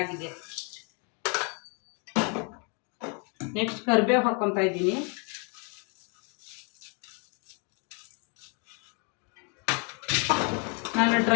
ನೆಕ್ಸ್ಟ್ ಕರಿಬೇವು ಹಾಕ್ಕೊತಾ ಇದ್ದೀನಿ. ನಾನು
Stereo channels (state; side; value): quieter; right; 36.0 dB